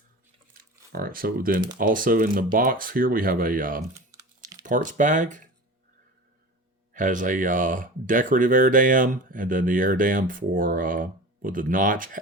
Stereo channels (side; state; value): both; normal; correlation 0.34